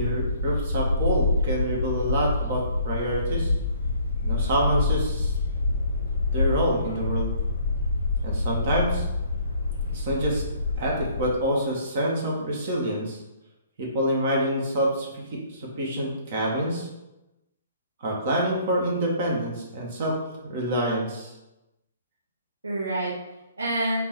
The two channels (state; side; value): inverted; both; correlation -0.57